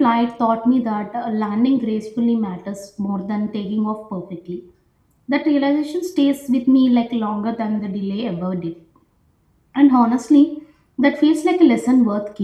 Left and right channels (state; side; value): identical; both; correlation 1.00